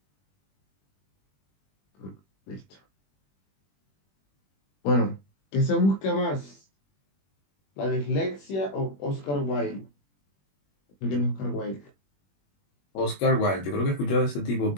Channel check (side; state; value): right; late; 21 ms